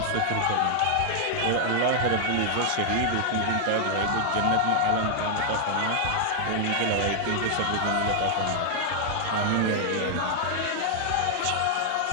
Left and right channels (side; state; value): both; different; correlation 0.00